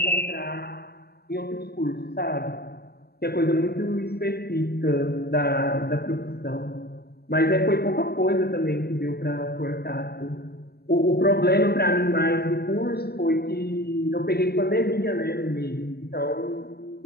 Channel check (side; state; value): right; late; 0.47 ms